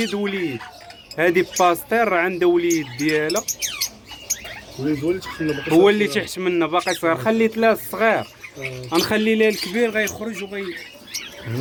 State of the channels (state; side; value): identical; both; correlation 1.00